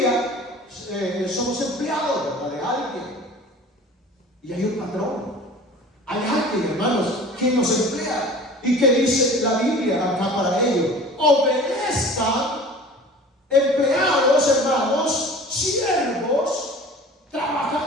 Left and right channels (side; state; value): both; normal; correlation 0.43